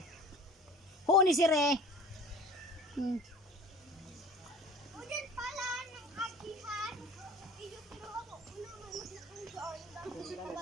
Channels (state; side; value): normal; both; correlation 0.42